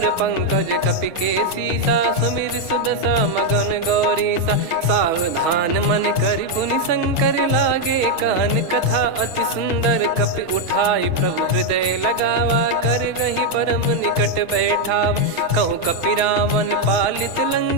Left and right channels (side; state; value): left; late; 6.2 ms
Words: पंकज कपि के सीसा सुमिर सुदशा मगन गौरीसा। सावधान मन करि पुनि शंकर लागे कहन कथा अति सुंदर। कपि उठाई प्रभु हृदय लगावा कर गही परम निकट बैठावा। कहु कपि रावण पालित